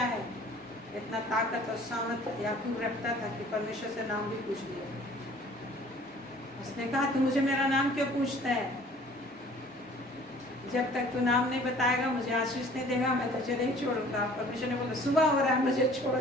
है? इतना ताकत और सामर्थ याकूब रखता था कि परमेश्वर से नाम भी पूछ लिया। उसने कहा तू मुझे मेरा नाम क्यों पूछता है? जब तक तू नाम नहीं बताएगा, मुझे आशीष नहीं देगा, मैं तुझे नहीं छोड़ूंगा। परमेश्वर ने बोला सुबह हो रहा है, मुझे छोड़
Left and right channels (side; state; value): both; normal; correlation 0.51